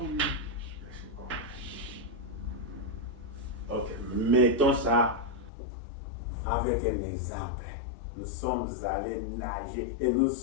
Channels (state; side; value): drops out; right; at 5.5 s